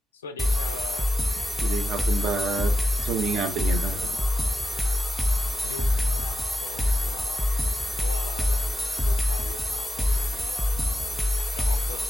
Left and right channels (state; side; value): normal; both; correlation 0.90